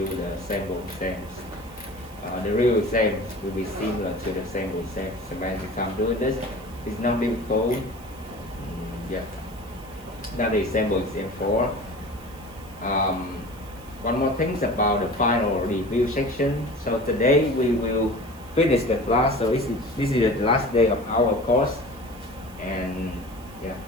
the sample exams. The real exams will be similar to the sample exams. So by the time doing this, it's not difficult. Yeah. That is sample exam 4. One more thing about the final review section. So today we will finish the class. So this is the last day of our course, and yeah,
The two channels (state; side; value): noise; right; hiss, 23 dB below the sound